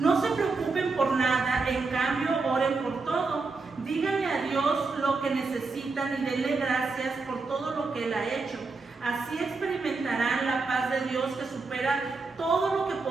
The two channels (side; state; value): left; quieter; 4.0 dB